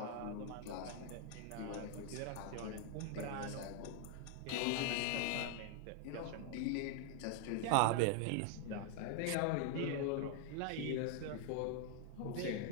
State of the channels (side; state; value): both; different; correlation 0.00